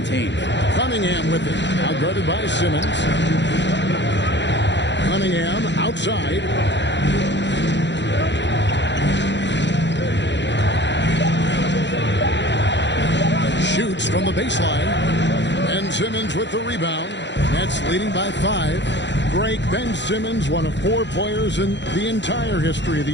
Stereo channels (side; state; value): right; late; 0.52 ms